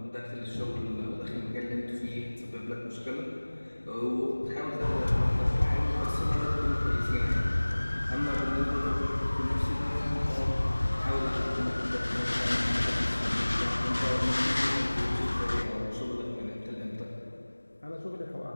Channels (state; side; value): inverted; both; correlation -1.00